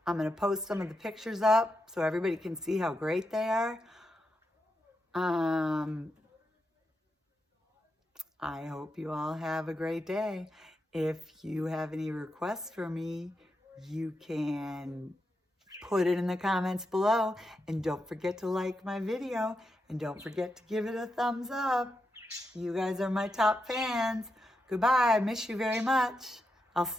I'm going to post some of the pictures up so everybody can see how great they are. I hope you all have a great day. If you have any requests for me, you can put it in the comments below. And don't forget to like my video. And don't forget to give it a thumbs up. You guys are my top fans. Goodbye. I miss you very much. I'll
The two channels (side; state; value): both; normal; correlation 0.86